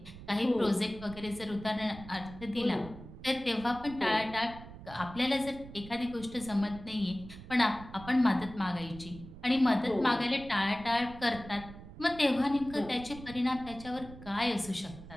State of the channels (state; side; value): noise; right; rumble, 15 dB below the sound